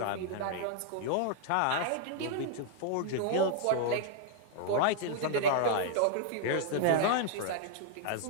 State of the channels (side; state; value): both; different; correlation -0.01